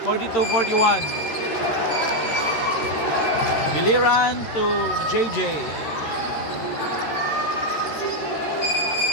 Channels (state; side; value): late; right; 13 ms